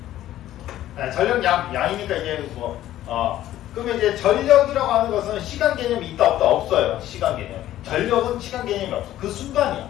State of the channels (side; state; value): right; quieter; 13.4 dB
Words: 전력 양이니까 이제 그러면 이제 전력이라고 하는 것은 시간 개념이 있다 없다? 없어요. 시간 개념. 전력은 시간 개념이 없어. 그